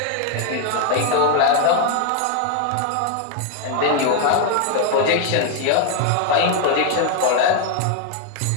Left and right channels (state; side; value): different; both; correlation 0.00